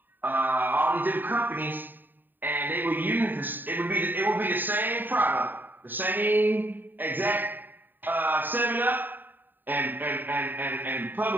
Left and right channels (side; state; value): left; late; 0.091 ms